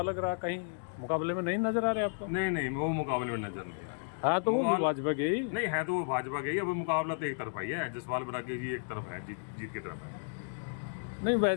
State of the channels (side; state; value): right; silent; digital silence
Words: लग रहा है, कहीं मुकाबले में नहीं नजर आ रहे आपको? नहीं, वो मुकाबले में नजर नहीं आ रहे। हाँ, तो वो भी भाजपा के ही नहीं है, तो वो भाजपा के ही। अब मुकाबला तो एक तरफा ही है, जसपाल बरागी जी एक तरफ है, जीत की तरफ है। नहीं